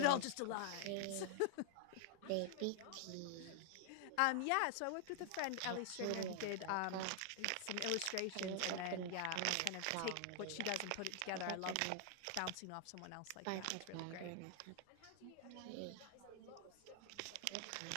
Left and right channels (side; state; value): both; different; correlation 0.00